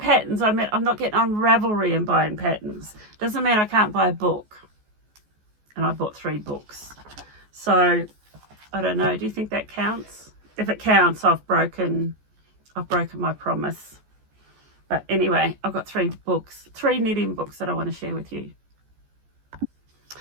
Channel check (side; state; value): left; late; 14 ms